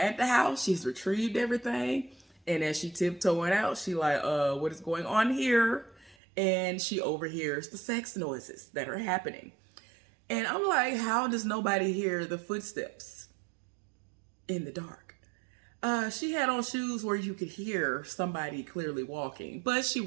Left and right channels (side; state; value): left; drops out; at 6.2 s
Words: the house, she's retrieved everything, and as she tiptoeing out, she like, what is going on here? And she overhears the sex noises that are happening. And I'm like, how does nobody hear the footsteps in the dark? She had on shoes where you could hear somebody clearly walking, but she